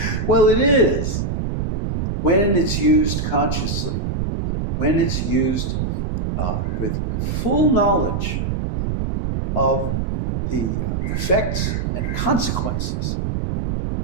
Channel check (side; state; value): right; noise; rumble, 1 dB below the sound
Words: Well, it is, when it's used consciously, when it's used with full knowledge of the effects and consequences